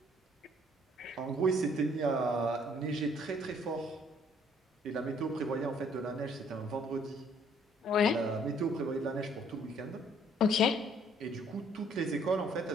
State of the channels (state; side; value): normal; both; correlation 0.61